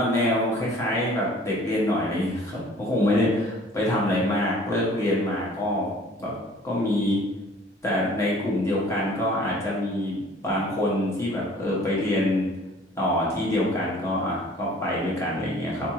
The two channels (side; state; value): both; normal; correlation 0.51